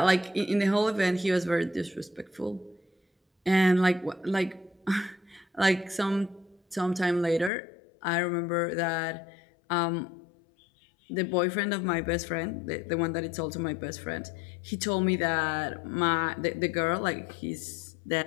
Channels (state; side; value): drops out; right; at 7.5 s